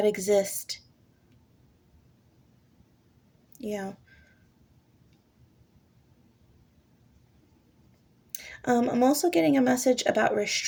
exist. Yeah. I'm also getting a message about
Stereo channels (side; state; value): both; identical; correlation 1.00